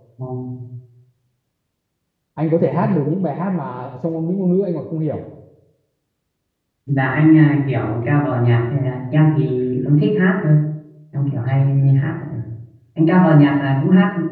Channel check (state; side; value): identical; both; correlation 1.00